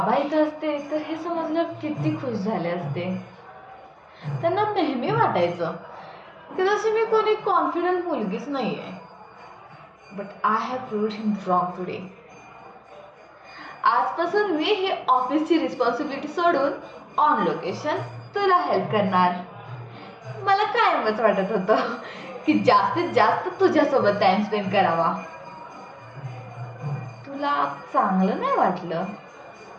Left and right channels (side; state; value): both; identical; correlation 1.00